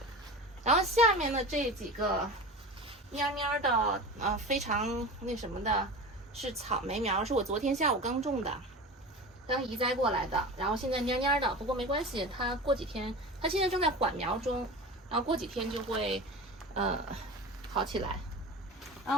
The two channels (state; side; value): normal; both; correlation 0.32